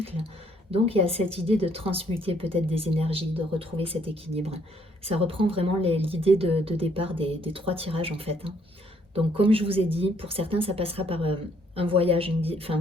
Donc, il y a cette idée de transmuter peut-être des énergies, de retrouver cet équilibre. Ça reprend vraiment l'idée de départ des trois tirages en fait, hein. Donc, comme je vous ai dit, pour certains, ça passera par un voyage, enfin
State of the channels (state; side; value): normal; both; correlation 0.67